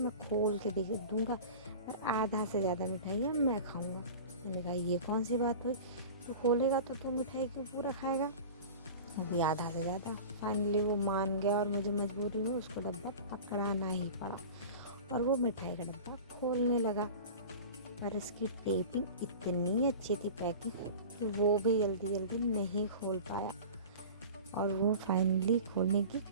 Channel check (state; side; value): inverted; both; correlation -0.35